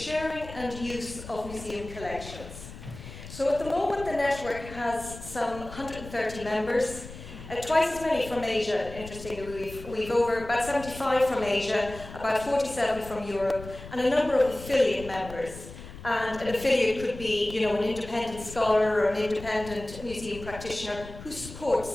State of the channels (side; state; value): left; noise; rumble, 14 dB below the sound